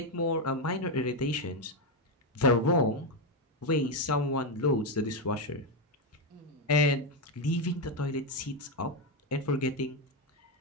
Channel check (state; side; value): normal; both; correlation 0.07